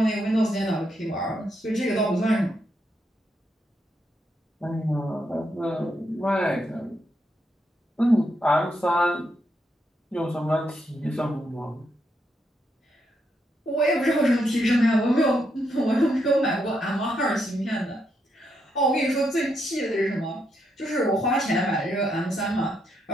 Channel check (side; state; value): both; normal; correlation 0.79